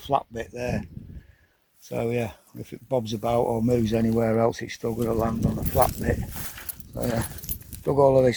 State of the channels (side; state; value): both; identical; correlation 1.00